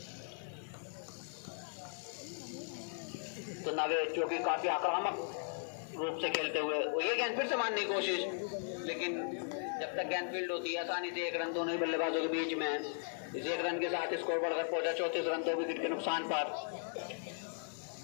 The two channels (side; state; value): right; silent; digital silence